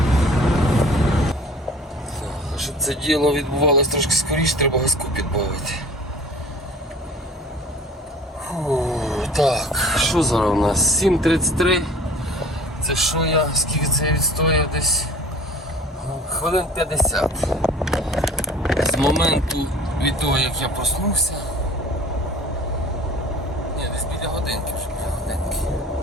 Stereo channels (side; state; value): both; normal; correlation 0.46